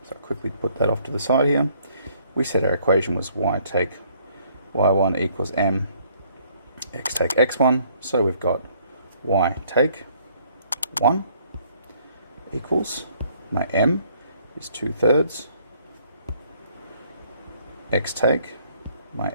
So I'll quickly put that off to the side here. We said our equation was y take y1 equals m, x take x1, so we've got y take 1 equals, my m is 2/3, x take, my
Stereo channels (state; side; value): inverted; both; correlation -0.63